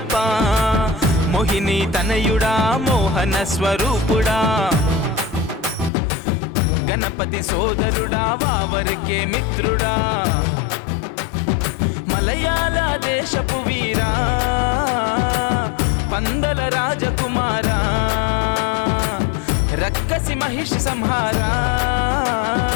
మోహిని తనయుడా మోహన స్వరూపుడా గణపతి సోదరుడా వావరికే మిత్రుడా మలయాళ దేశపు వీరా పందల రాజకుమారా రక్కసి మహిషి సంహారా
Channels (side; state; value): right; drops out; at 5.9 s